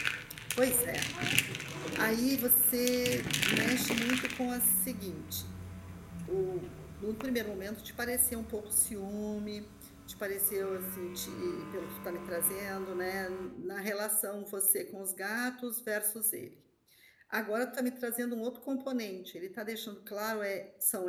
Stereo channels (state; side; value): identical; both; correlation 1.00